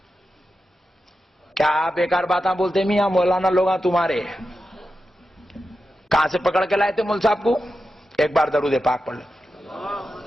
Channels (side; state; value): both; normal; correlation 0.90